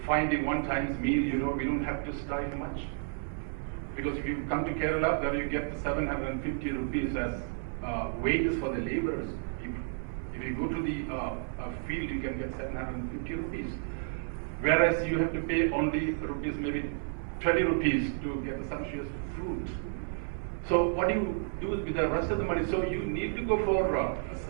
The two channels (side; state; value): left; silent; 57 dB below the other